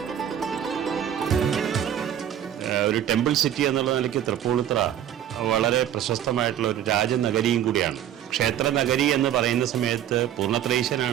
ഒരു temple city എന്നുള്ള നിലയ്ക്ക് തൃപ്പൂണിത്തുറ വളരെ പ്രശസ്തമായിട്ടുള്ള ഒരു രാജനഗരിയും കൂടിയാണ്. ക്ഷേത്ര നഗരി എന്ന് പറയുന്ന സമയത്ത്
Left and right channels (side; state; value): left; quieter; 10.6 dB